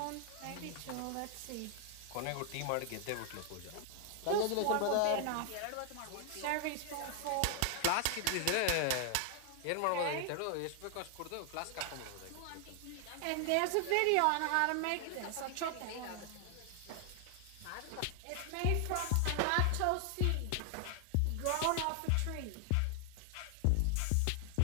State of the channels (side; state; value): both; different; correlation 0.00